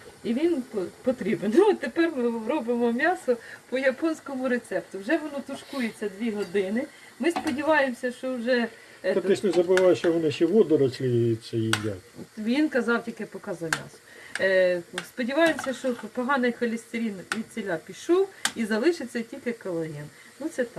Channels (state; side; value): identical; both; correlation 1.00